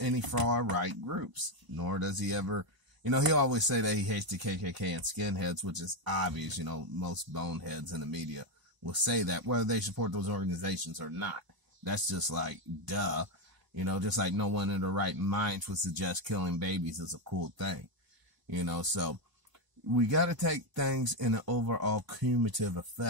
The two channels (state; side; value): late; left; 1.0 ms